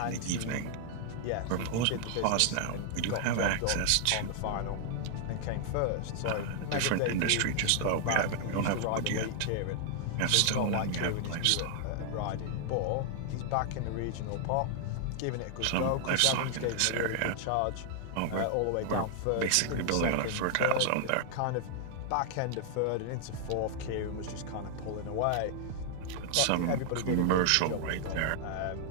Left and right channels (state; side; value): different; both; correlation 0.00